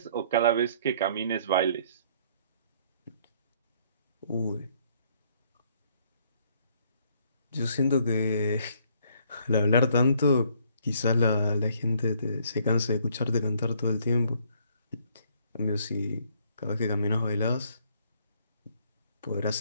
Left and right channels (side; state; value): both; inverted; correlation -0.65